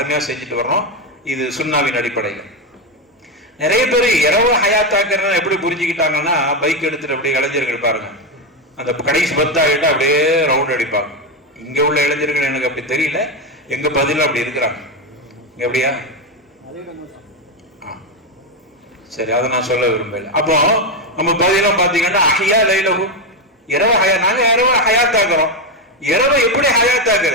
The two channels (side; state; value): both; normal; correlation 0.09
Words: செஞ்சுட்டு வர்றோம். இது சுன்னாவின் அடிப்படையில். நிறைய பேர் இரவு ஹயாத்தாக்குறத எப்படி புரிஞ்சுக்கிட்டாங்கன்னா, பைக் எடுத்துட்டு அப்படியே இளைஞர்கள் பாருங்க, அந்த கடைசி 10 ஆகிட்டா அப்படியே ரவுண்ட் அடிப்பாங்க. இங்க உள்ள இளைஞர்கள் எனக்கு அப்படி தெரியல, எங்க பதிலும் அப்படி இருக்கிறாங்க. எப்படியா? சரி, அதை நான் சொல்ல விரும்பல. அப்போ நம்ம பதிலாம் பாத்தீங்கன்னா அஹ்யா லைலஹு இரவு நாங்க இரவு ஹயாத்தாக்குறோம். இரவை எப்படி